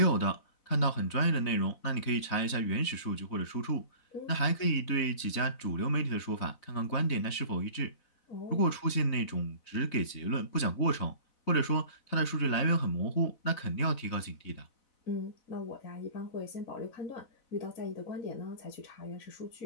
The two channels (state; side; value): late; right; 4.0 ms